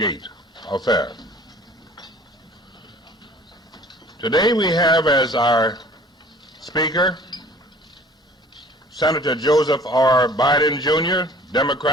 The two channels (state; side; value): normal; both; correlation 0.50